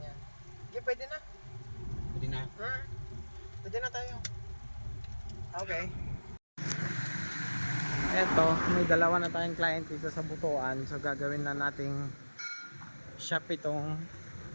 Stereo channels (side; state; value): both; inverted; correlation -1.00